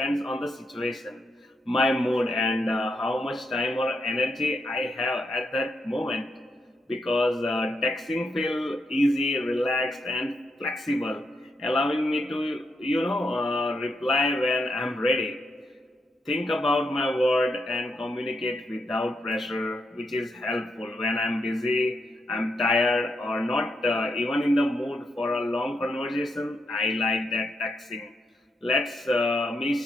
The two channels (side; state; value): both; normal; correlation 0.81